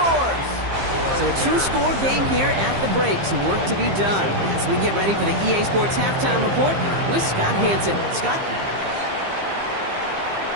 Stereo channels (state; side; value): late; left; 15 ms